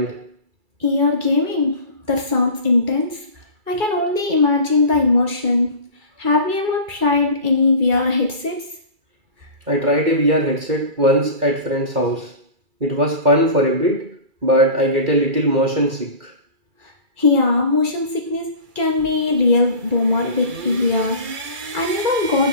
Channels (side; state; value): left; late; 2.3 ms